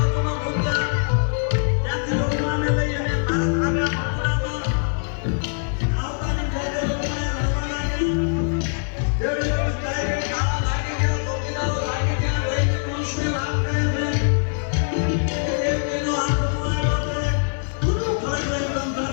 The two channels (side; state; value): right; silent; digital silence